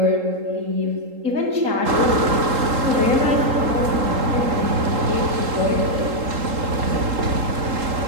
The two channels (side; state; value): left; late; 3.8 ms